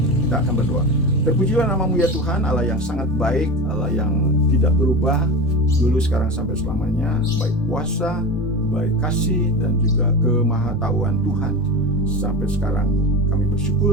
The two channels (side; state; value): both; normal; correlation 0.25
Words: Kita akan berdoa. Terpujilah namamu ya Tuhan, Allah yang sangat baik, Allah yang tidak berubah, dulu, sekarang, sampai selamanya. Baik kuasa, baik kasih, dan juga kemahatauan Tuhan. Sampai sekarang kami